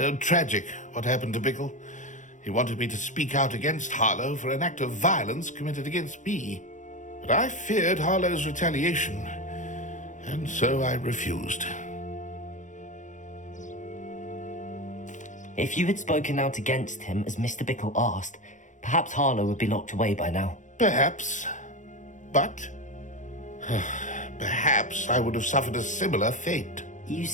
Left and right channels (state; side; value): late; right; 0.36 ms